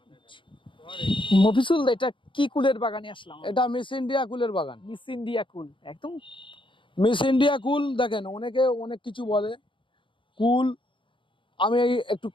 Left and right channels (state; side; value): late; right; 0.24 ms